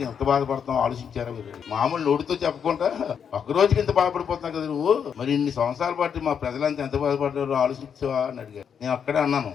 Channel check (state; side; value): quieter; right; 7.5 dB